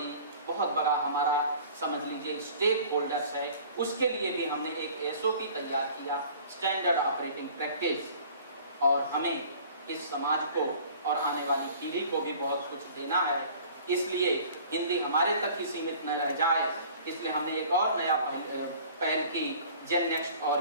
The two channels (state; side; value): inverted; both; correlation -0.48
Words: बड़ा हमारा समझ लीजिए स्टेक होल्डर्स है, उसके लिए भी हमने एक एसओपी तैयार किया, स्टैंडर्ड ऑपरेटिंग प्रैक्टिस, और हमें इस समाज को और आने वाली पीढ़ी को भी बहुत कुछ देना है, इसलिए हिंदी हमारे तक ही सीमित न रह जाए, इसलिए हमने एक और नया पहल की, जेन नेक्स्ट